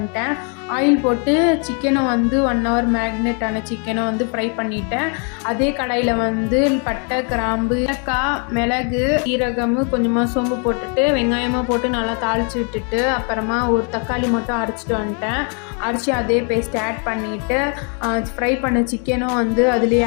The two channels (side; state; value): right; quieter; 39.9 dB